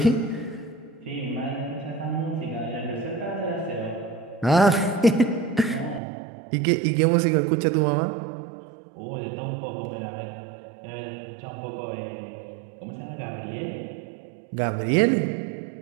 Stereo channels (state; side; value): drops out; left; at 6.0 s